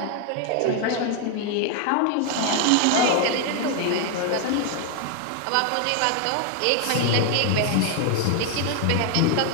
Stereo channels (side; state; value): both; different; correlation 0.00